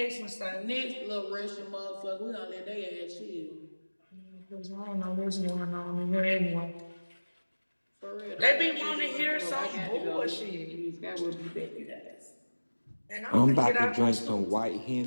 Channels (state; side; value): inverted; both; correlation -1.00